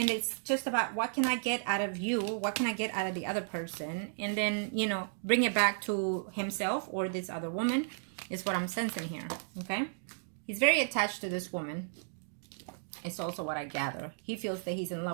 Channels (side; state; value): left; silent; digital silence